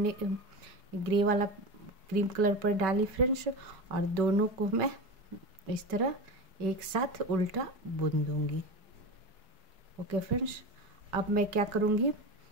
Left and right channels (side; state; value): left; late; 4.7 ms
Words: क्रीम कलर पर डाली फ्रेंड्स, और दोनों को मैं इस तरह एक साथ उल्टा बुन दूंगी। ओके फ्रेंड्स, अब मैं क्या करूँगी,